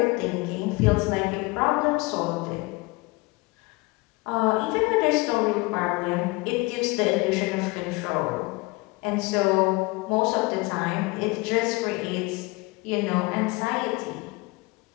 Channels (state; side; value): quieter; right; 24.3 dB